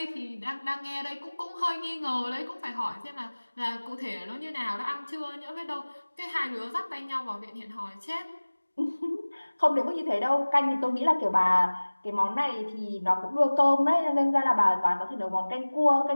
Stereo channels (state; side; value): inverted; both; correlation -1.00